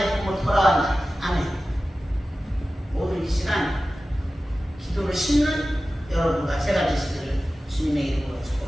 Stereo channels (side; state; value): both; normal; correlation 0.95